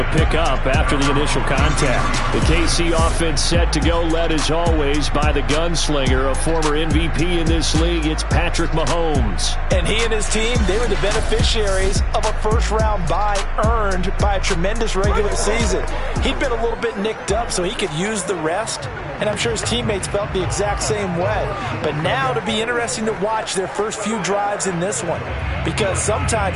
pick up after the initial contact. The KC offense set to go, led as always by the gunslinger, a former MVP in this league. It's Patrick Mahomes. And he and his team, they were the beneficiaries of a first-round bye earned by a tremendous regular season. He'd been a little bit nicked up, so he could use the rest, and I'm sure his teammates felt the exact same way. But now it'll be interesting to watch their first few drives in this one, because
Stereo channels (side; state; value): both; identical; correlation 1.00